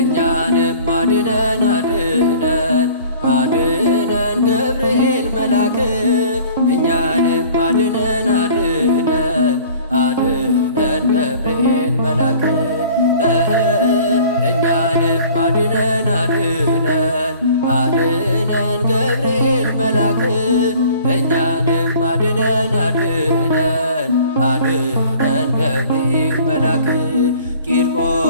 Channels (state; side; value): inverted; both; correlation -0.49